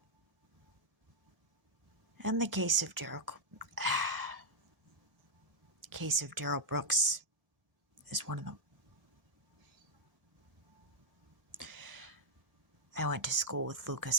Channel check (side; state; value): left; late; 1.7 ms